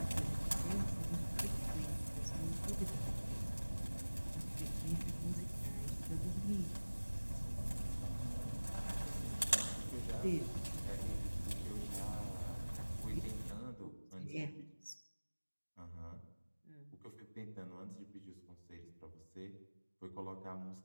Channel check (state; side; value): inverted; both; correlation -1.00